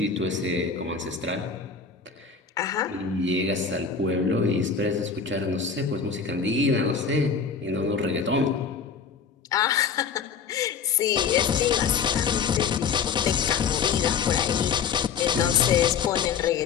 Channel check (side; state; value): right; quieter; 6.1 dB